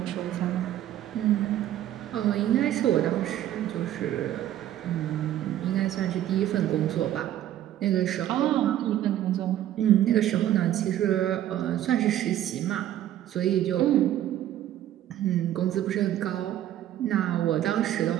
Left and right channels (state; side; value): quieter; left; 12.3 dB